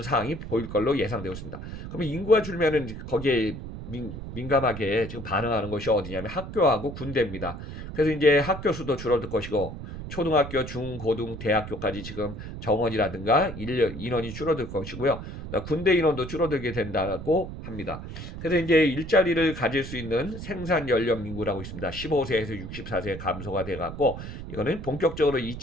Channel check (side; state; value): right; noise; rumble, 9 dB below the sound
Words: 상황이 보일 걸로 예상되고 있습니다. 그러면 인구가 줄면은 거기에 민감하게 지금 반응하는 것이 어디냐면 학교하고 군대입니다. 그래서 이제 학교 수도 줄어들 것이고 초등학교, 중, 고등, 대학교까지 지금 정원이라든가 인원이 줄어들 것이고요. 군대 인원도 줄어들게 된다고 합니다. 그래서 이제 일자리를 가질 수 있는 생산 연령 인구라고 있습니다. 15세에서 64세 감소가 돼갖고 이거는 본격적으로